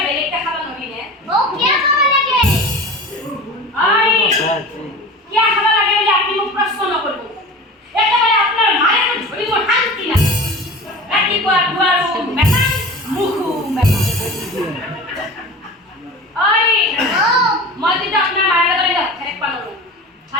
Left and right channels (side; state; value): both; normal; correlation 0.35